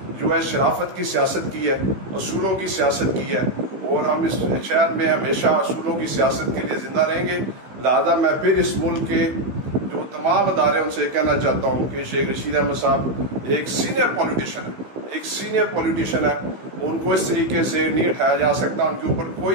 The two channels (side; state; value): left; late; 15 ms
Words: जो है शराफत की सियासत की है, असूलों की सियासत की है और हम इस शहर में हमेशा असूलों की सियासत के लिए जिंदा रहेंगे। लिहाजा मैं फिर इस मुल्क के जो तमाम अदारे उनसे कहना चाहता हूँ कि शेख रशीद अहमद साहब एक सीनियर पॉलिटिशियन है, एक सीनियर पॉलिटिशियन है, उनको इस तरीके से नहीं उठाया जा सकता। उनके ऊपर